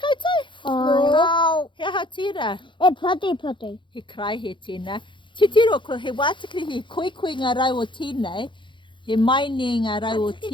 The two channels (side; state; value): right; late; 0.23 ms